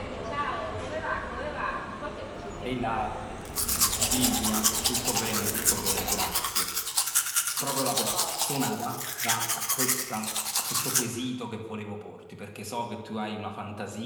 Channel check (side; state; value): both; identical; correlation 1.00